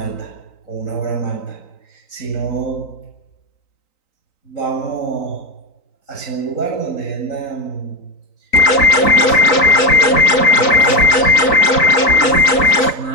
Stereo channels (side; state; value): right; late; 3.9 ms